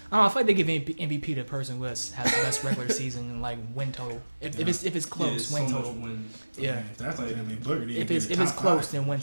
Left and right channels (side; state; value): both; inverted; correlation -1.00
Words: I feel like they give MVP to the person who has the best regular season and like win total. If it's close, Yeah, win so total. much wins. Yeah. If that's like, I mean, Booker didn't If get it's the if it's top close, five. then win